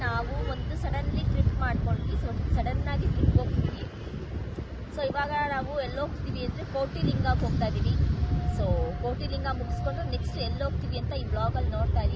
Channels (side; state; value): both; identical; correlation 1.00